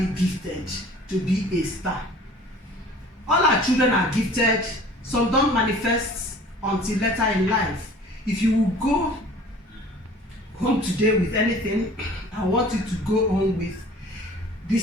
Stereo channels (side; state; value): both; normal; correlation 0.47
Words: gifted to be a star. All our children are gifted. Some don't manifest until later in life. If you will go home today with anything, I want you to go home with